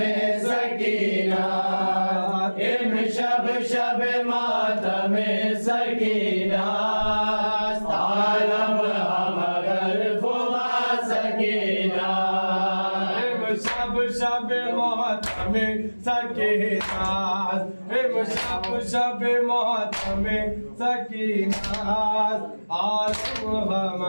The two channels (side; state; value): both; inverted; correlation -1.00